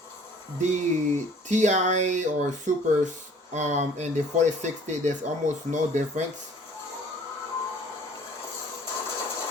the Ti or Supers and the 4060, there's almost no difference.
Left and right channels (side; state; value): both; normal; correlation 0.53